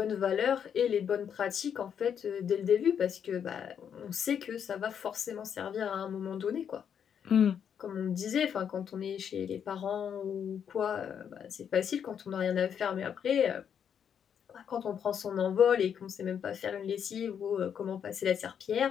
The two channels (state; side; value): quieter; right; 8.1 dB